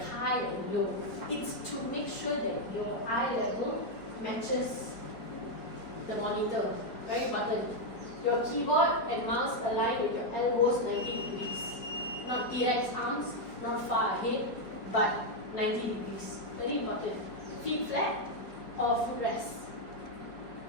high and low? It's to make sure that your eye level matches the monitor. Very important. Your keyboard and mouse align with your elbows 90 degrees. Not T-Rex arms, not far ahead, but 90 degrees. Very important. Feet flat or footrest.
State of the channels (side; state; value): right; late; 4.9 ms